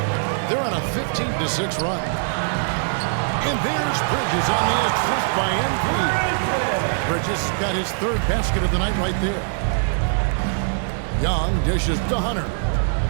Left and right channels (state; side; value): silent; left; 64 dB below the other